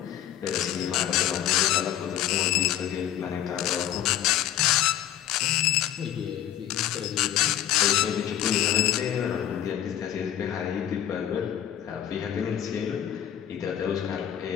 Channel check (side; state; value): right; quieter; 11.2 dB